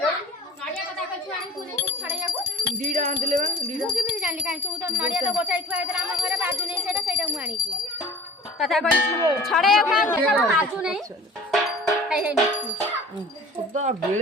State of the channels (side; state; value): both; normal; correlation 0.42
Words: नड़िया कथा कछु आनी तू नहीं छड़ैयाको ଦିଟା ଆଣିଥିଲେ ବା ଦିଟା ମୁଁ କେମିତି ଜାଣିଲି କାଇଁ ତୁ ତ ନଡିଆ ତ ଗୋଟାଇ ଥୁଆ ହେଇଥିଲା ଆମ ଘରେ ବାଜୁ ନାହିଁ ସେଇଟା ମୁଁ ଆଣିଛି କଥା କହି ଛଡେଇବାକୁ କାଇଁ ଦେଖା ବାଜୁ ନାହିଁ ହେଇ ହେଇ ସଦା